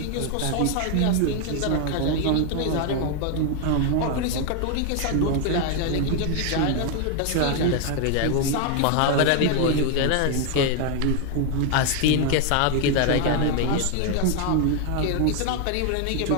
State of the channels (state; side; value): different; both; correlation 0.01